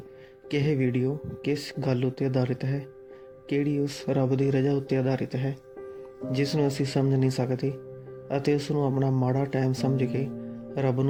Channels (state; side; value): identical; both; correlation 1.00